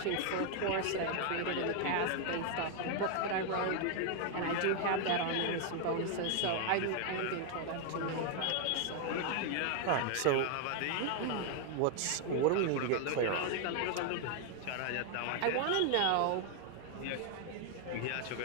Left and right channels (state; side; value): different; both; correlation 0.00